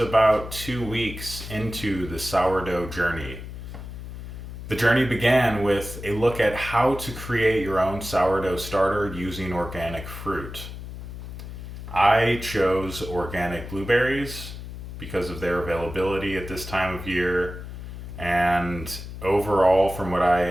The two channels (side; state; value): left; noise; hum, 10 dB below the sound